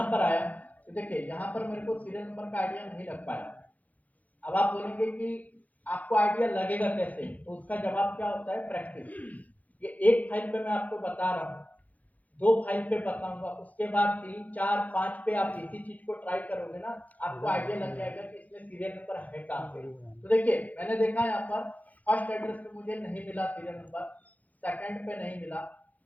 पर आया, तो देखिए यहाँ पर मेरे को सीरियल नंबर का आइडिया नहीं लग पाया। अब आप बोलेंगे कि आपको आइडिया लगेगा कैसे, तो उसका जवाब क्या होता है, प्रैक्टिस। ये एक फाइल पे मैं आपको बता रहा हूँ, 2 फाइल पे बताऊंगा, उसके बाद 3 4 5 पे आप इसी चीज को ट्राई करोगे ना, आपको आइडिया लग जाएगा कि इसमें सीरियल नंबर है कहाँ पे। तो देखिए मैंने देखा यहाँ पर फर्स्ट एड्रेस पे मुझे नहीं मिला सीरियल नंबर, सेकंड पे नहीं मिला,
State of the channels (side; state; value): right; late; 0.078 ms